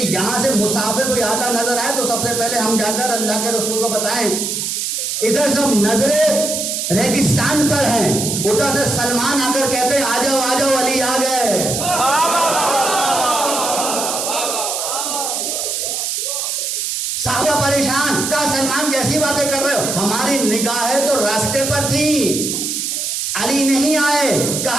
یہاں سے مسافر کوئی آتا نظر آئے تو سب سے پہلے ہم جا کر اللہ کے رسول کو بتائیں. ادھر سب نظریں ریگستان پر ہیں، ادھر سے سلمان آ کر کہتے ہیں آ جاؤ آ جاؤ علی آ گئے. صحابہ پریشان، کہا سلمان کیسی باتیں کر رہے ہو؟ ہماری نگاہیں تو راستے پر تھی، علی نہیں آئے.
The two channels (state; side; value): noise; right; hiss, 2 dB below the sound